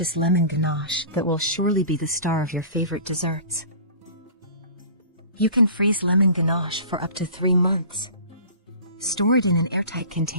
lemon ganache that will surely be the star of your favorite desserts. You can freeze lemon ganache for up to 3 months. Store it in an airtight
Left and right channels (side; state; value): both; inverted; correlation -0.41